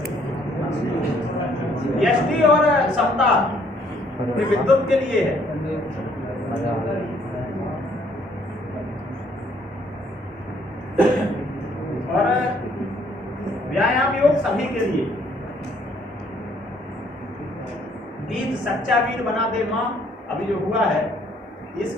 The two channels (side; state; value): both; normal; correlation 0.65